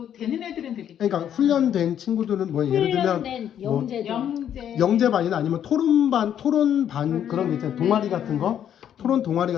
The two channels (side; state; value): right; quieter; 9.7 dB